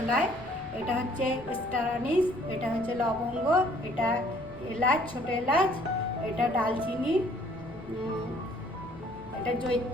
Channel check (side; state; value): left; noise; rumble, 19 dB below the sound